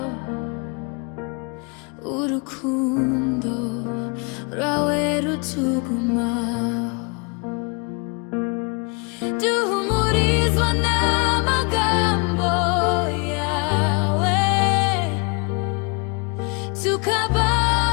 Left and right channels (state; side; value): quieter; right; 32.8 dB